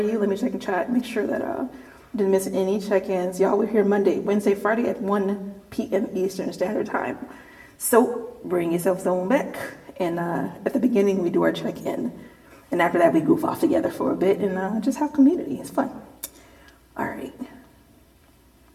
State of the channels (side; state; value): both; identical; correlation 1.00